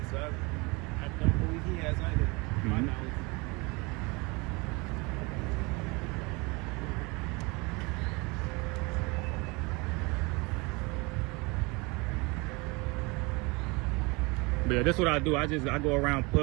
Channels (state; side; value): quieter; left; 26.7 dB